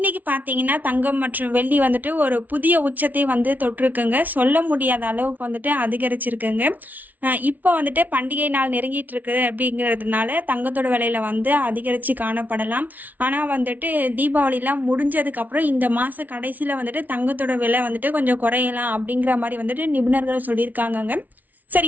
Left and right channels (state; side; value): late; left; 0.079 ms